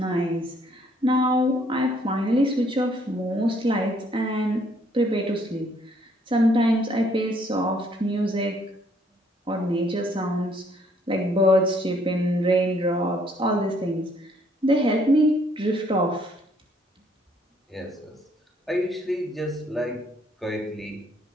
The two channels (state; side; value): normal; both; correlation 0.65